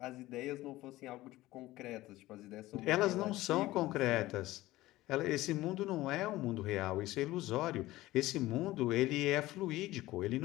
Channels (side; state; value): right; quieter; 17.3 dB